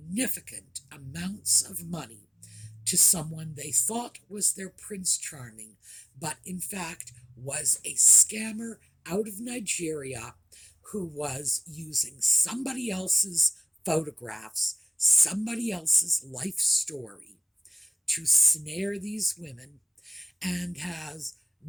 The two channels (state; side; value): identical; both; correlation 1.00